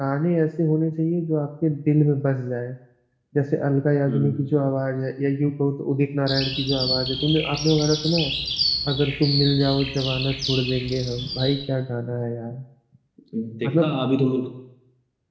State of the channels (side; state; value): both; identical; correlation 1.00